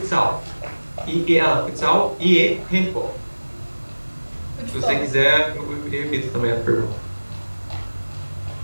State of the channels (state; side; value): inverted; both; correlation -1.00